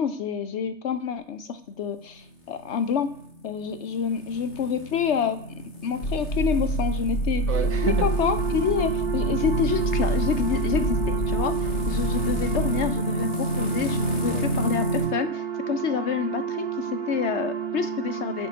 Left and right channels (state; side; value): late; right; 3.3 ms